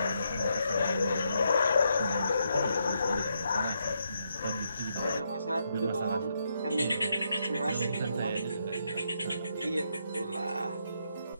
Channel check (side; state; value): both; inverted; correlation -0.79